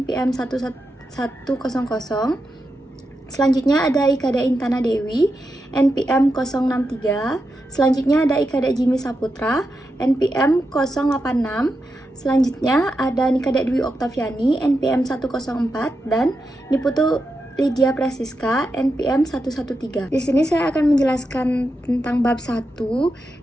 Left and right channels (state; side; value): normal; both; correlation 0.87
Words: 11100. Selanjutnya ada Ikada Intana Dewi, NPM 063. Selanjutnya ada Ikada Jimmy Saputra, NPM 086. Selanjutnya ada Nikada Dwi Oktaviani, NPM 104, dan Niputu Lydia Prasiska, NPM 113. Di sini saya akan menjelaskan tentang bab 1,